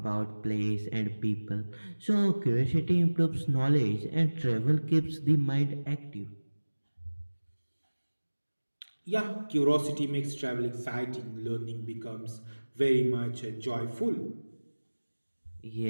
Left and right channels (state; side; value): inverted; both; correlation -1.00